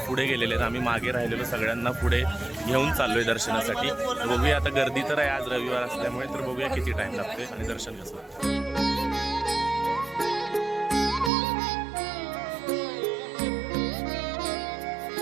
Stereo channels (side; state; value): left; drops out; at 11.3 s